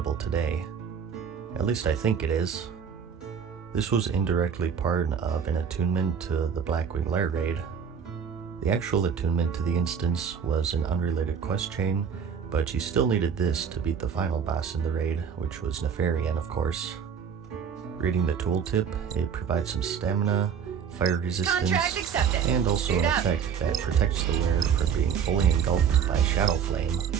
today. At least I think it is. This was indirectly part of an attunement to the Blackwing Lair raid. The actual attunement to the instance was an unrelated quest chain, but you still needed this to beat the final boss in the raid, which was Nefarian, of course. Reading the tooltip, it provides some stamina, fire resistance, Contract accepted. and also Suit an up. effect that protects the wearer from being fully engulfed by Shadow Flame.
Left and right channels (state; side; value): quieter; left; 7.1 dB